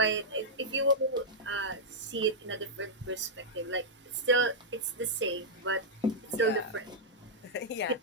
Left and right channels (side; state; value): both; normal; correlation -0.07